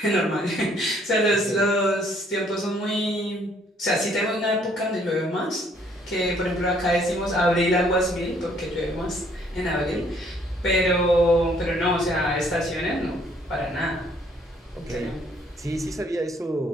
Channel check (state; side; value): normal; both; correlation 0.64